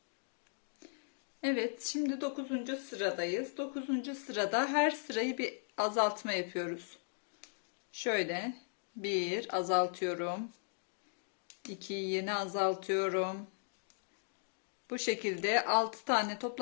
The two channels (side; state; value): right; silent; digital silence